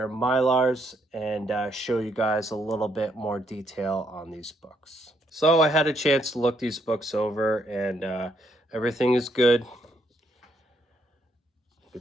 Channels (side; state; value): both; normal; correlation 0.74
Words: Mylars and show you guys a little bit more detail on these books. So I had a chance to look these books over, and everything is good. You